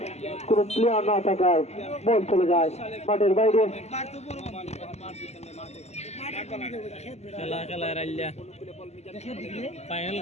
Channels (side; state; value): right; late; 0.32 ms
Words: কোন প্লেয়ার না থাকায় বল চলে যায় মাঠের বাইরে। খেলা খেলা রাইল্লা ফাইনাল